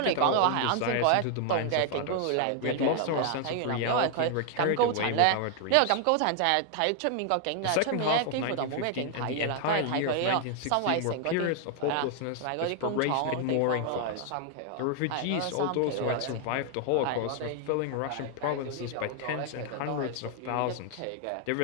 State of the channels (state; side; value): different; both; correlation 0.00